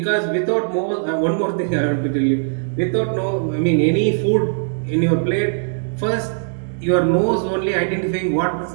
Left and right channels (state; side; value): silent; left; 66 dB below the other